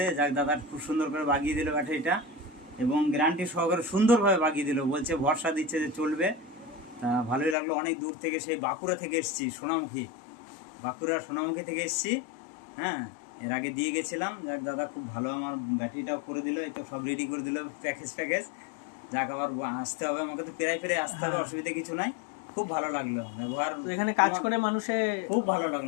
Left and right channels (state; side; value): drops out; right; at 7.6 s